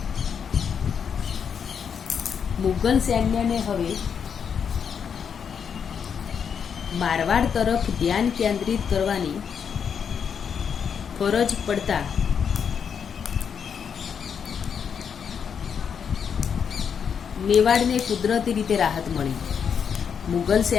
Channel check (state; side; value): quieter; right; 7.1 dB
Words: મુગલ સૈન્યને હવે મારવાડ તરફ ધ્યાન કેન્દ્રિત કરવાની ફરજ પડતા મેવાડને કુદરતી રીતે રાહત મળી. મુગલ